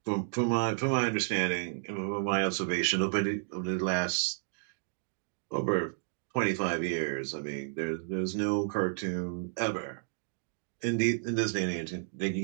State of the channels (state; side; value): silent; left; digital silence